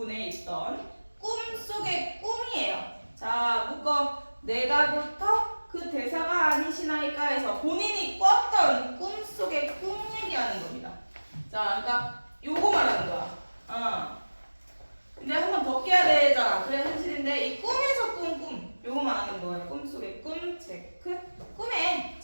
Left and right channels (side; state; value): both; inverted; correlation -1.00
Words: 있던 꿈속의 꿈이에요. 자, 묶어. 내가부터 그 대사가 아니시나이까 해서 본인이 꿨던 꿈속의 꿈 얘기하는 겁니다. 자, 그러니까 요거 말하는 거야. 근데 한 번 더 깨야 되잖아. 그래 현실인데 이 꿈에서 꾼 꿈. 요거 말하는 거예요. 꿈속의 꿈 체크. 꿈에